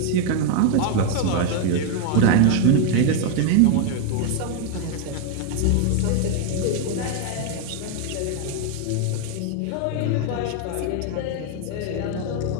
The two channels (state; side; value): different; both; correlation 0.01